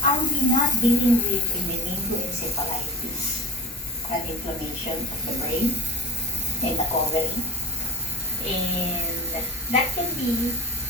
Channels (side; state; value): both; normal; correlation 0.33